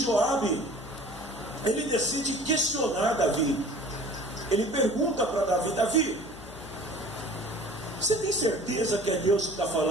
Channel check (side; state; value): left; noise; hum, 18 dB below the sound